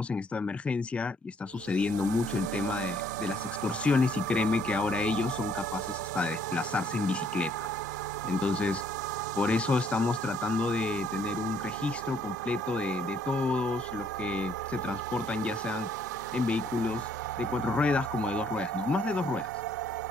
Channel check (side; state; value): both; normal; correlation 0.65